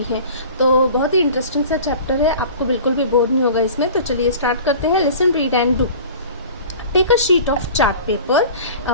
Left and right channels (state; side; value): inverted; both; correlation -0.41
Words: हैं। तो बहुत ही इंटरेस्टिंग सा चैप्टर है, आपको बिल्कुल भी बोर नहीं होगा इसमें। तो चलिए स्टार्ट करते हैं। Listen, read and do. Take a sheet of chart paper.